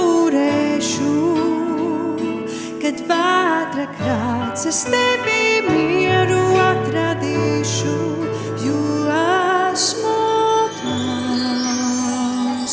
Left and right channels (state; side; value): identical; both; correlation 1.00